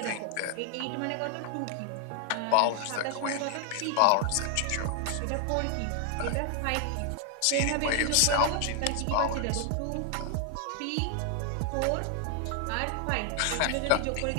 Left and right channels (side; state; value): both; different; correlation 0.00